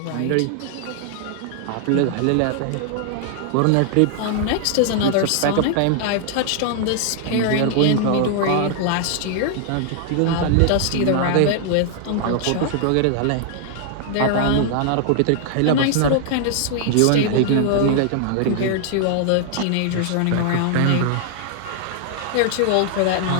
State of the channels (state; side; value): different; both; correlation 0.00